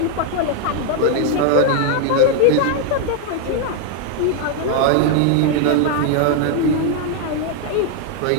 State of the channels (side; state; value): both; different; correlation 0.00